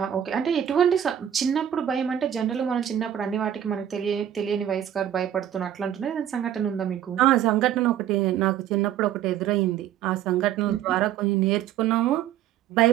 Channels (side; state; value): left; quieter; 10.5 dB